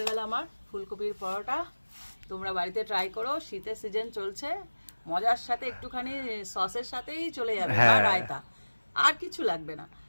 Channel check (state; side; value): inverted; both; correlation -1.00